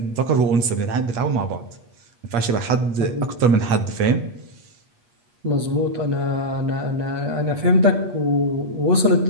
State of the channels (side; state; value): left; late; 8.4 ms